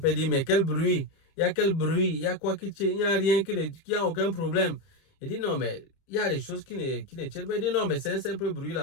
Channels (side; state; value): right; late; 30 ms